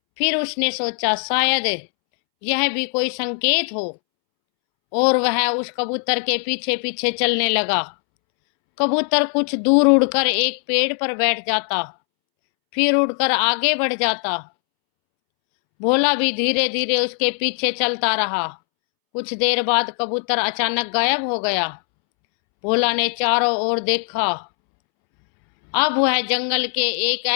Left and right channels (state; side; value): silent; right; 66 dB below the other